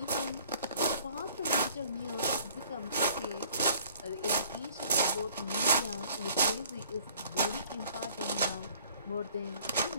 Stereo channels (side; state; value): both; inverted; correlation -0.55